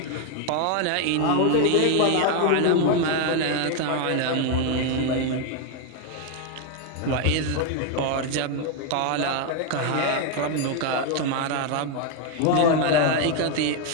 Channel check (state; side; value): different; both; correlation 0.01